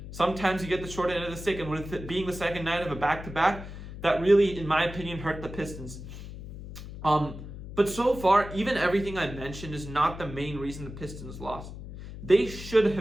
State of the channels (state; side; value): noise; left; hum, 11 dB below the sound